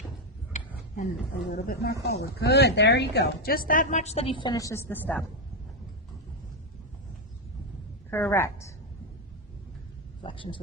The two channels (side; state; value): both; normal; correlation 0.06